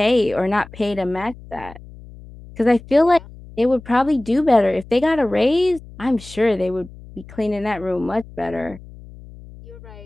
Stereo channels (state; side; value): noise; left; hum, 18 dB below the sound